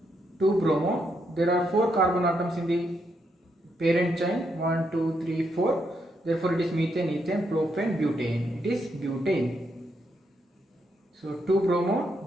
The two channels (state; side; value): normal; both; correlation 0.79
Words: 2 bromo. There are 4 carbon atoms in the parent chain. 1, 2, 3, 4. Therefore, it is methane, ethane, propane, butane. It is butane. So 2 bromo,